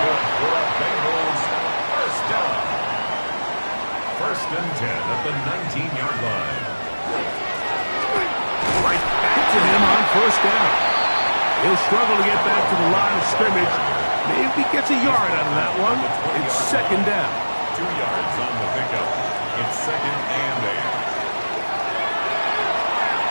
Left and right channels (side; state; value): both; inverted; correlation -1.00